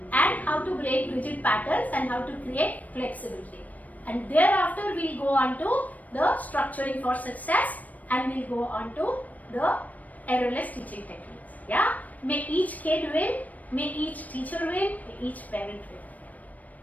and how to break rigid patterns and how to create flexibility. And thereafter we'll go on to the structuring for success and we'll go on to the errorless teaching techniques. Yeah, may each kid win, may each teacher win, may each parent win.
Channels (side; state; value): right; late; 0.074 ms